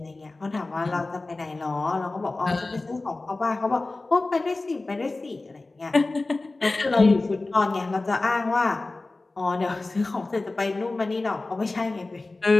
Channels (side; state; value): right; quieter; 3.2 dB